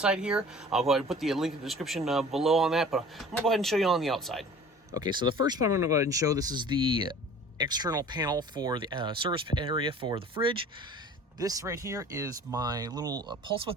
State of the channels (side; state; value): both; normal; correlation 0.45